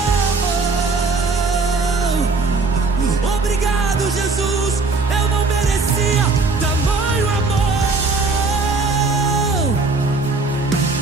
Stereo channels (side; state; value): left; quieter; 3.9 dB